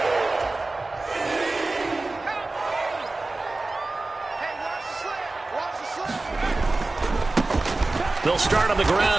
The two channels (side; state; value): left; quieter; 3.2 dB